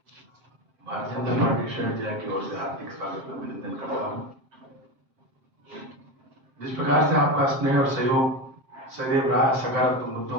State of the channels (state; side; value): late; left; 7.6 ms